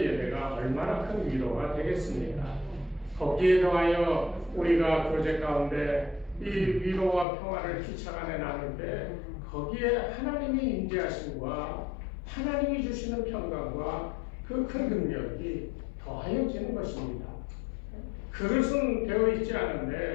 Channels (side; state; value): right; drops out; at 7.2 s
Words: 예배가 얼마나 큰 위로가 되겠습니까? 거기에 더하여 우리가 교제 가운데 이 위로와 평화를 피차 간에 나눌 때 거기에 하나님이 임재하심과 하나님이 주시는 평강과 그 큰 능력이 더하여지는 것입니다. 그릇은 되어 있지